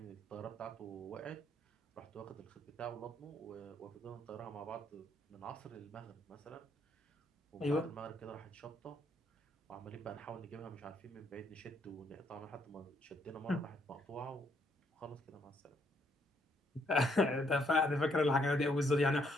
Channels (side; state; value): both; normal; correlation 0.71